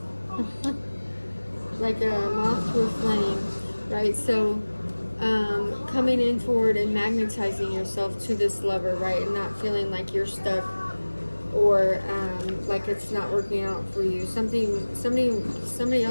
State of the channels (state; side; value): inverted; both; correlation -1.00